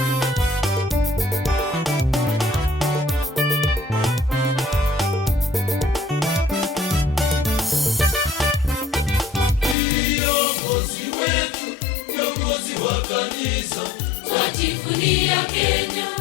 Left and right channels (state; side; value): drops out; right; at 9.8 s